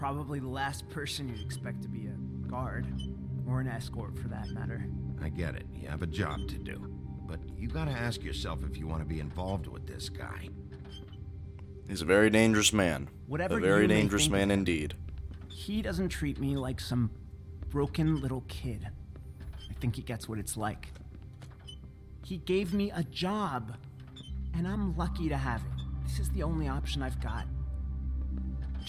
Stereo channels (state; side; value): identical; both; correlation 1.00